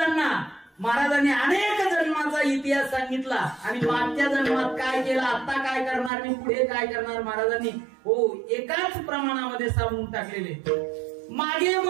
अनेक जन्माचा इतिहास सांगितला आणि मागच्या जन्मात काय केलं, आता काय करणार आणि पुढे काय करणार, महाराजांनी हो एकाच प्रमाणामध्ये सांगून टाकलेले. मागे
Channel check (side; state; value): left; drops out; at 6.1 s